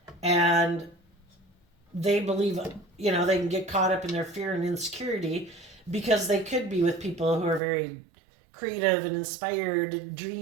and they believe, they can get caught up in their fear and insecurity because they could be with people who are very creative and inspired and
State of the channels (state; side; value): drops out; left; at 7.6 s